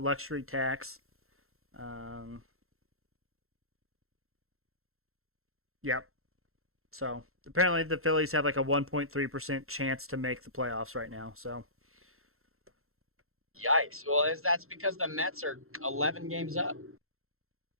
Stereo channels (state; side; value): late; left; 0.62 ms